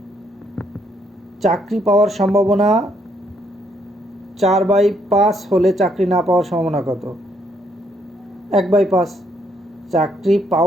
চাকরি পাওয়ার সম্ভাবনা 4/5 হলে চাকরি না পাওয়ার সম্ভাবনা কত? 1/5। চাকরি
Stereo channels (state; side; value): normal; both; correlation 0.71